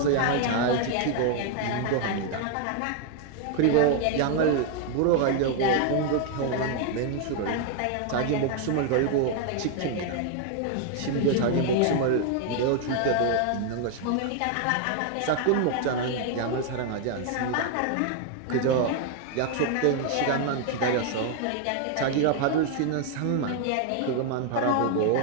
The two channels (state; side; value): different; both; correlation 0.00